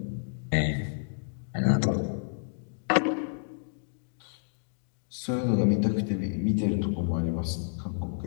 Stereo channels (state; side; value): silent; right; digital silence